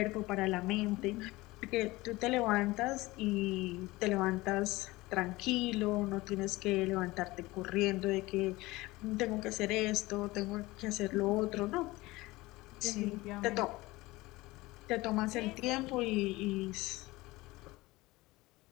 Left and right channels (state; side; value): quieter; right; 20.4 dB